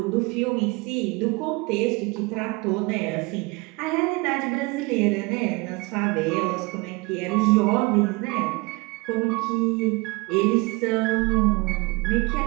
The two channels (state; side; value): quieter; left; 26.2 dB